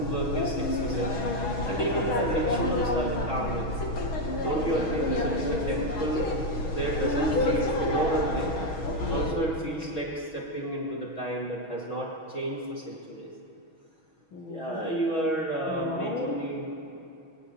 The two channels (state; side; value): late; right; 6.3 ms